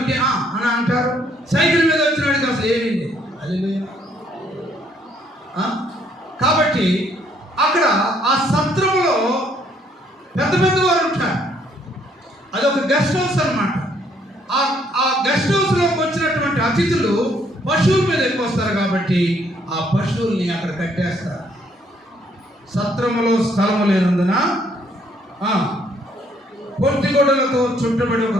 అని అంటారు. సైకిల్ మీద వచ్చిన వాడికి అసలు ఏమైంది? హల్లెలూయా. కాబట్టి అక్కడ ఆ సత్రంలో పెద్ద వారు ఉంటారు. అదొక గెస్ట్ హౌస్ అన్నమాట. ఆ గెస్ట్ మనుషులు పశువుల మీద ఎక్కువ వస్తారు కాబట్టి ఆ పశువుల్ని అక్కడ కట్టేస్తారు. సత్రములో స్థలము లేనందున పొట్టిగొడ్డలతో చుట్టబడి ఒక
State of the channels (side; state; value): both; normal; correlation 0.67